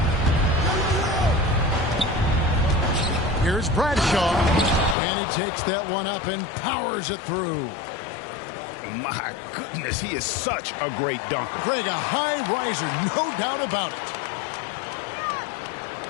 Here's Bradshaw. And he takes that one up and powers it through. My goodness, he is such a great dunker. Greg, a high riser, no doubt about it.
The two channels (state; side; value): drops out; right; at 5.0 s